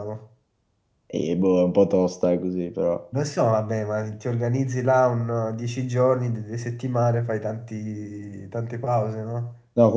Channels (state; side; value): identical; both; correlation 1.00